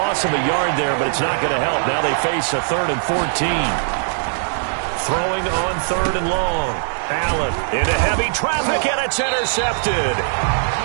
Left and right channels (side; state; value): left; silent; digital silence